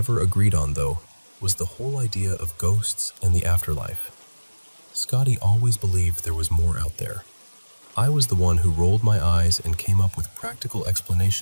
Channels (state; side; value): inverted; both; correlation -1.00